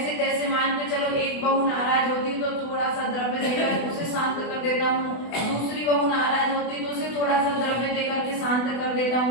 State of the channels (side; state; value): right; late; 24 ms